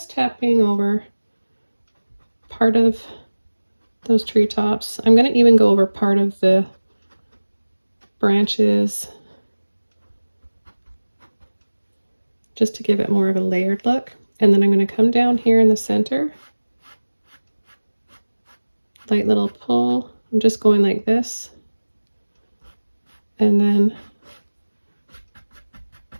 tapping over part of those treetops. I'm going to even go over part of the branches just to give it more of a layered look. And then I'm going to come down here in the center, light little pull. I'm just going like this, and then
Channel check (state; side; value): inverted; both; correlation -1.00